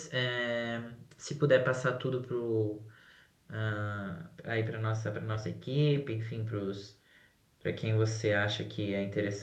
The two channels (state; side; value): identical; both; correlation 1.00